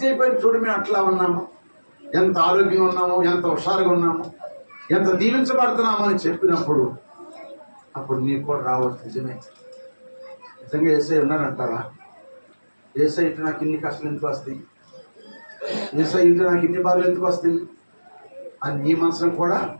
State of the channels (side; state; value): both; inverted; correlation -1.00